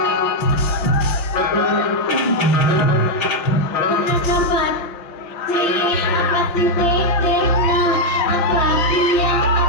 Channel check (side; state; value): right; late; 5.5 ms